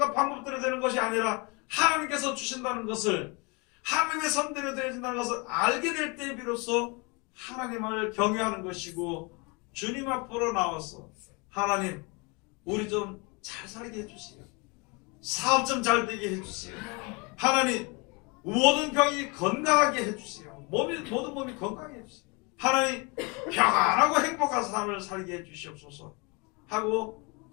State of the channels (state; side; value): quieter; right; 29.6 dB